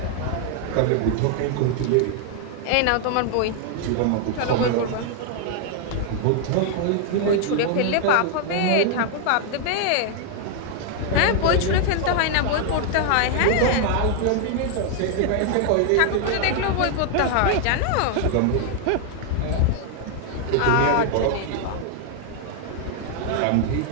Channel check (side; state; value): both; different; correlation 0.00